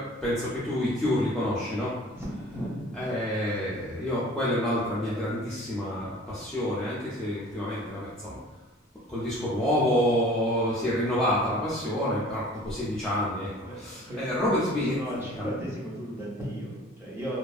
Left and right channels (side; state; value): both; normal; correlation 0.47